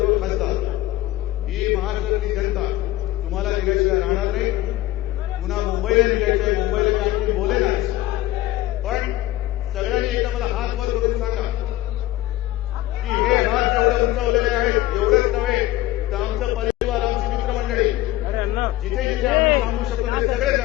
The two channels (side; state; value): right; quieter; 15.6 dB